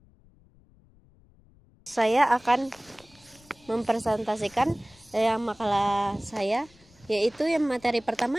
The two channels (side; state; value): left; noise; rumble, 29 dB below the sound